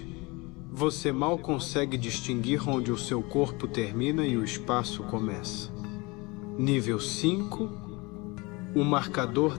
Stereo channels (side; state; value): right; quieter; 25.4 dB